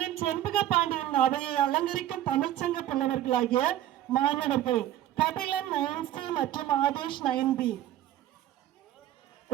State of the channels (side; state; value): left; quieter; 12.7 dB